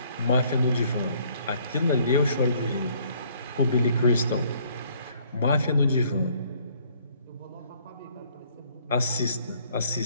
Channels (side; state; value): both; inverted; correlation -0.62